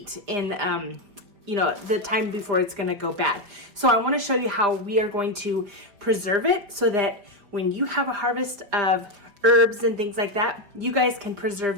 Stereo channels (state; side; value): late; left; 5.0 ms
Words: in the time before it's gonna go bad. So I wanna show you how we are going to preserve it so that when you have a harvest of herbs and things like that, you guys can preserve